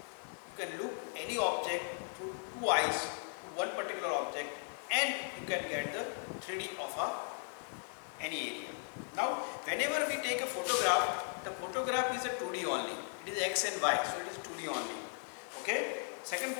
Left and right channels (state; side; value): silent; right; 53 dB below the other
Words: can look any object through two eyes, one particular object, and you can get the 3D of any area. Now whenever we take a photograph, the photograph is a 2D only. It is X and Y, so it is 2D only. Okay. Second